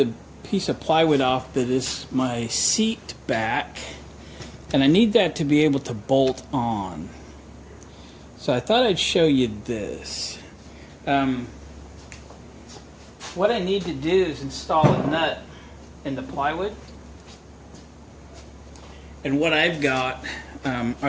piece of plywood off that is my seat back, and I need that to be able to bolt on. So I thought I'd show you this. What I need to do is install a nut in the plywood. And what I've got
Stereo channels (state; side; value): identical; both; correlation 1.00